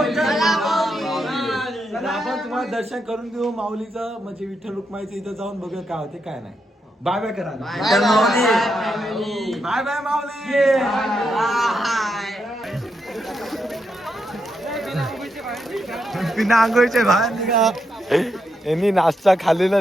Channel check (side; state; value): both; normal; correlation 0.82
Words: चला आपण तुम्हाला दर्शन करून देऊ माऊलीचं, म्हणजे विठ्ठल रुक्माईचं. इथं जाऊन बघूया काय होते काय नाही. बाय बाय करा. बाय बाय माऊली. बिना आंघोळीचे बाहेर निघा. यांनी नाश्ता खाल्लेला